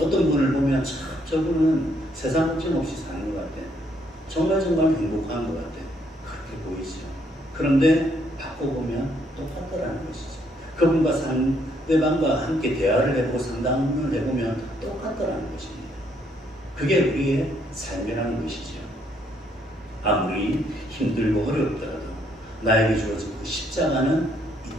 분을 보면 참 저분은 세상 걱정 없이 사는 것 같아. 정말 행복한 것 같아. 그렇게 보이죠. 그런데 바꿔보면 똑같더라는 것이죠. 그분과 상대방과 함께 대화를 해보고 상담을 해보면 똑같더라는 것입니다. 그게 우리의 삶이라는 것이죠. 아무리 힘들고 어렵더라도 나에게 주어진 그 십자가는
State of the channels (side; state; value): both; normal; correlation 0.70